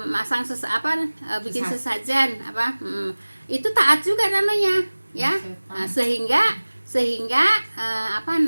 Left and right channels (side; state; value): both; inverted; correlation -1.00